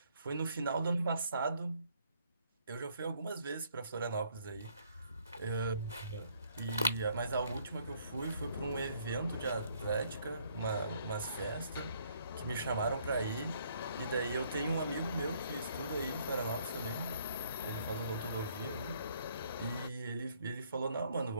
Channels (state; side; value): inverted; both; correlation -0.66